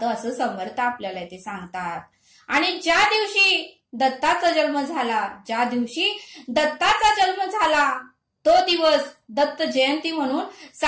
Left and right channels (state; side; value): identical; both; correlation 1.00